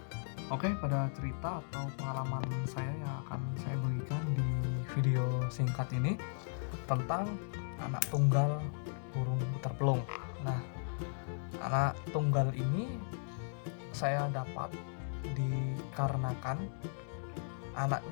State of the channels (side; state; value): right; silent; digital silence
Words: Oke, pada cerita atau pengalaman saya yang akan saya bagikan di video singkat ini tentang anak tunggal burung puter pelung. Nah, anak tunggal ini saya dapat dikarenakan